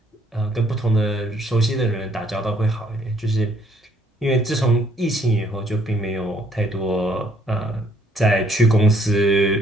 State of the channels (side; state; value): both; normal; correlation 0.65